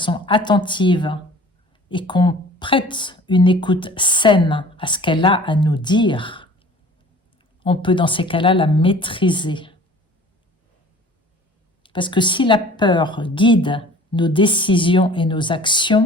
attentive et qu'on prête une écoute saine à ce qu'elle a à nous dire, on peut dans ces cas-là la maîtriser. Parce que si la peur guide nos décisions et nos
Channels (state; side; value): normal; both; correlation 0.47